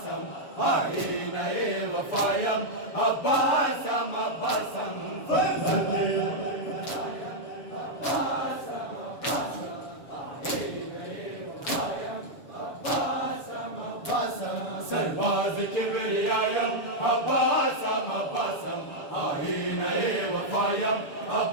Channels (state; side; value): late; right; 7.1 ms